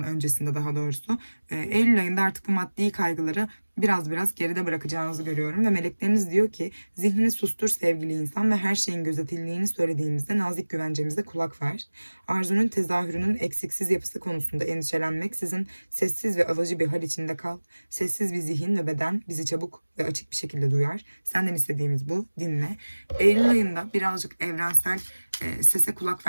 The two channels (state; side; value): inverted; both; correlation -1.00